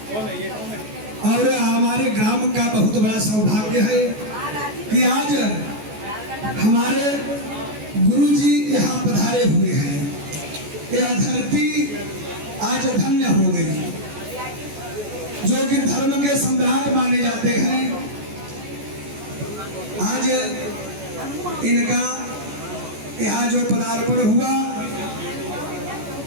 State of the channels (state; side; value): late; left; 14 ms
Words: और हमारे ग्राम का बहुत बड़ा सौभाग्य है कि आज हमारे गुरु जी यहाँ पधारे हुए हैं। यह धरती आज धन्य हो गई, जो कि धर्म के सम्राट माने जाते हैं। आज इनका यहाँ जो पदार्पण हुआ,